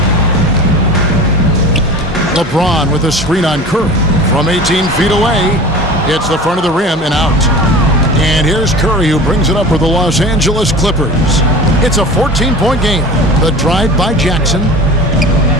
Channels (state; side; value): normal; both; correlation 0.37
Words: LeBron with a screen on Curry. From 18 feet away, hits the front of the rim and out. And here's Curry who brings it up for the Los Angeles Clippers. It's a 14-point game. The drive by Jackson.